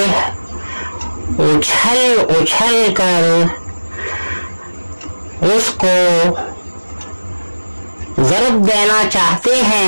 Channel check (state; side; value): inverted; both; correlation -1.00